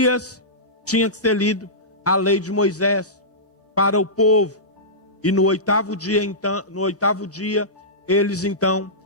tinha que ser lido a lei de Moisés para o povo. E no oitavo dia, eles então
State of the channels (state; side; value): normal; both; correlation -0.17